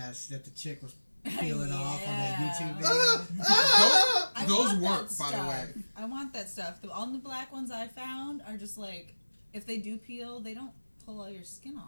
that the chick was peeling off on that Yeah. YouTube video. I Those want work, that by the stuff. way. I want that stuff. All the black ones I found are just like, if they do peel, they don't pull all your skin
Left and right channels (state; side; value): inverted; both; correlation -1.00